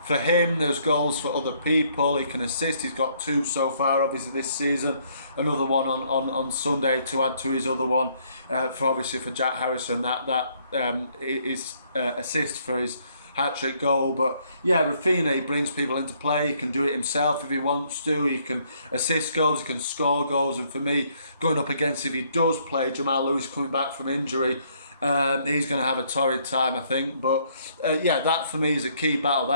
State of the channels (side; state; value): both; inverted; correlation -0.67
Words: for him, there's goals for other people. He can assist. He's got 2 so far, obviously, this season. Another one on Sunday to add to his other one, for Jack Harrison. That is assist for his hat-trick goal. But yeah, Rafinha, he brings people into play. He can do it himself if he wants to. He can assist goals, he can score goals. And for me, going up against, if he does play Jamal Lewis coming back from injury, he's going to have a torrid time, I think. But yeah, that for me is a key battle.